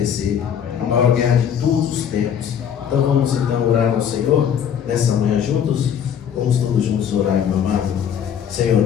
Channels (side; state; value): right; quieter; 8.5 dB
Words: a maior guerra de todos os tempos. Então vamos então orar ao Senhor nessa manhã juntos. Vamos todos juntos orar, meu amado. Senhor